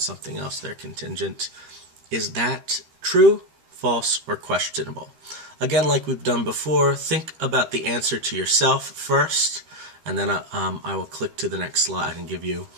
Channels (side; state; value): left; late; 13 ms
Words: else. They're contingent. Is that true, false, or questionable? Again, like we've done before, think about the answer to yourself first, and then I will click to the next slide and give you